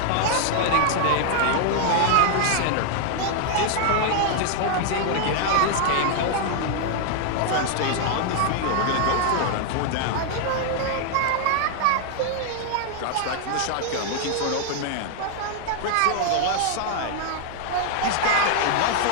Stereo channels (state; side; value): different; both; correlation 0.00